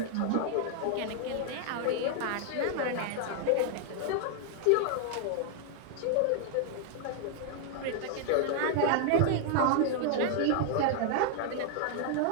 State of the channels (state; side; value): different; both; correlation 0.00